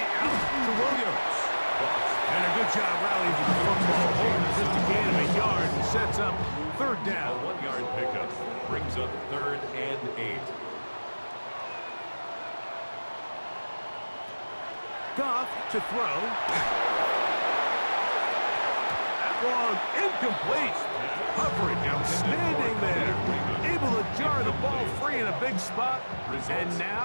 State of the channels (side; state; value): both; inverted; correlation -1.00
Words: out to Williams. And a good job rallying to the football. Holding just a gain of a yard and sets up 3rd A down. 1-yard pickup. Brings up 3rd and 8. Goff to throw. That one incomplete. Coverage outstanding there. Able to jar the ball free in a big spot. And